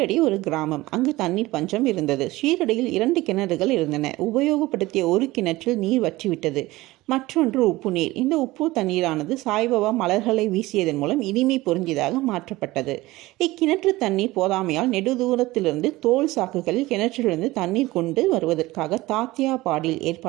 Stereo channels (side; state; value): left; quieter; 19.0 dB